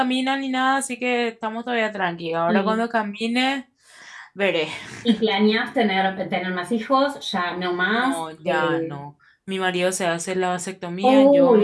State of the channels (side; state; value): both; identical; correlation 1.00